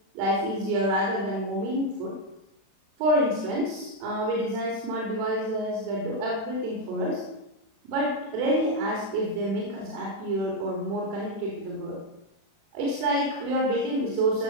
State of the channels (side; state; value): left; late; 36 ms